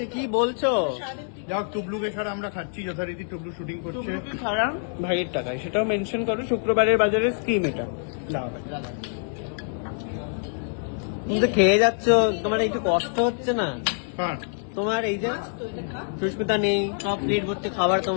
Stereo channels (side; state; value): right; silent; 61 dB below the other